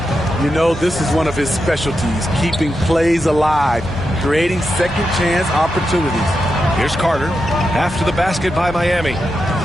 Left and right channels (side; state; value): both; normal; correlation 0.87